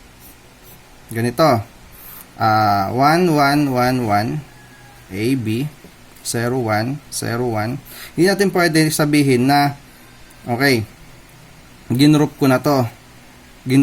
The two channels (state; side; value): identical; both; correlation 1.00